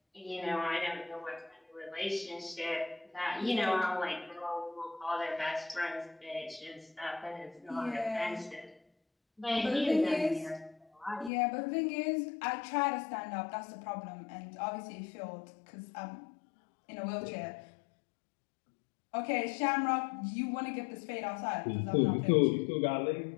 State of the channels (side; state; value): right; drops out; at 11.3 s